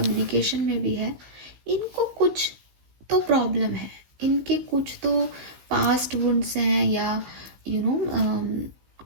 में भी है, इनको कुछ तो प्रॉब्लम है, इनके कुछ तो पास्ट वुंड्स हैं, या यू नो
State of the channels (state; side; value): late; left; 15 ms